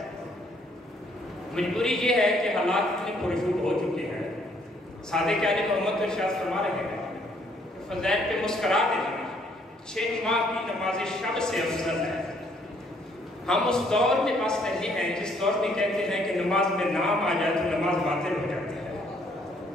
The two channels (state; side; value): normal; both; correlation 0.66